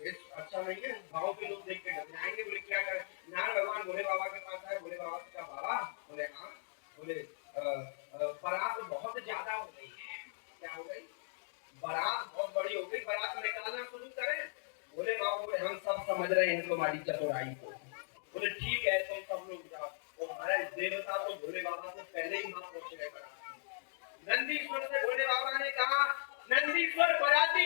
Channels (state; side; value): silent; right; digital silence